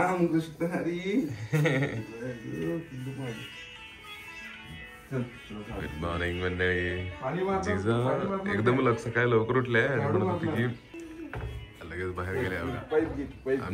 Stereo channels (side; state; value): both; identical; correlation 1.00